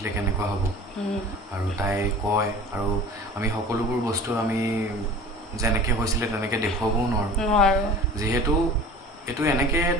কেনেকুৱা হ'ব আৰু তাই কয় আৰু আমি সকলোবোৰ বস্তু আমি যেনেকৈ হৈছিলে তেনেকৈ দেখুৱাবও নোৱাৰো যিহেতু এইটো এনেকৈ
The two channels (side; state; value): both; normal; correlation 0.41